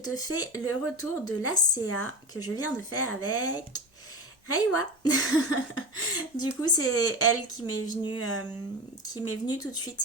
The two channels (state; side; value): normal; both; correlation 0.27